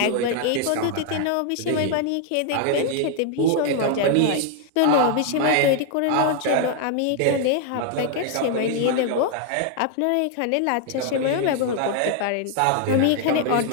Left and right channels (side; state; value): both; different; correlation 0.00